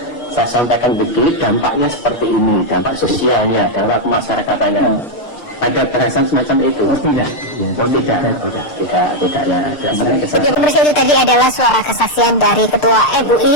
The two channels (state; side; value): late; right; 6.7 ms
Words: saya sampaikan begini, dampaknya seperti ini, dampak sosialnya, dampak kemasyarakatan. Ada bahasan semacam itu? Tidak. Oh, tidak ya. Oke, pemirsa, itu tadi adalah suara kesaksian dari Ketua